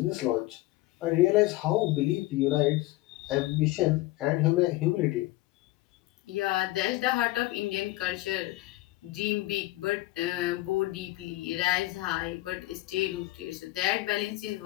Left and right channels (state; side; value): quieter; right; 18.6 dB